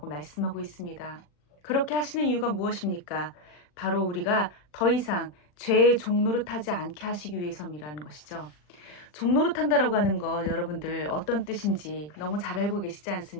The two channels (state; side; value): late; right; 40 ms